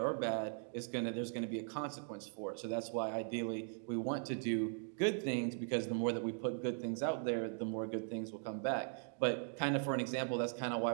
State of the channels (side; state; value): left; silent; 51 dB below the other